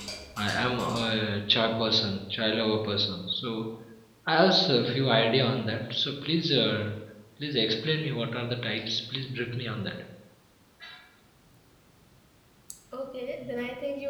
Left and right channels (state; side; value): identical; both; correlation 1.00